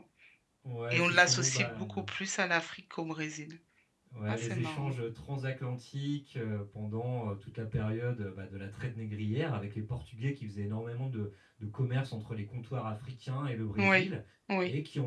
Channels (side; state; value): both; identical; correlation 1.00